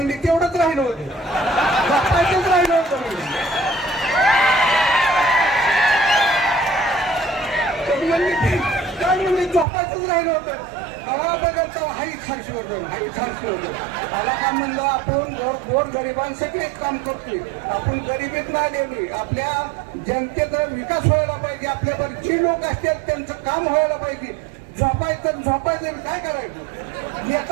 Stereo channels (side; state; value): left; drops out; at 9.7 s